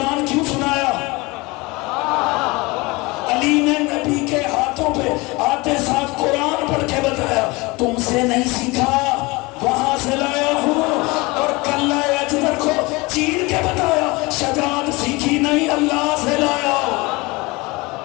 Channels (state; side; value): quieter; right; 24.1 dB